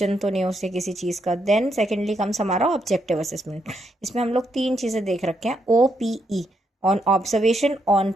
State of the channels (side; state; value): both; normal; correlation 0.79